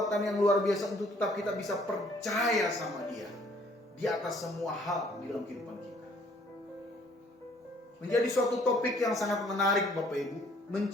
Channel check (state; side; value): normal; both; correlation 0.61